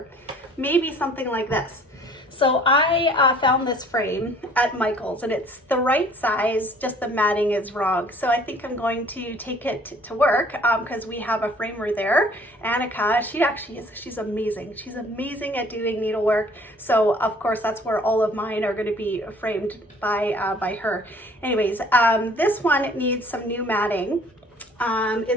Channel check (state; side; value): normal; both; correlation 0.54